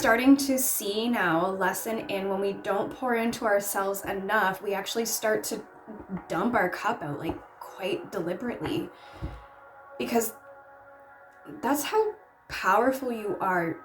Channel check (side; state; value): both; identical; correlation 1.00